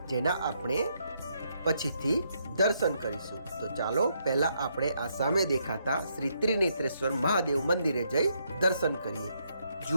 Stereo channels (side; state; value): both; inverted; correlation -0.75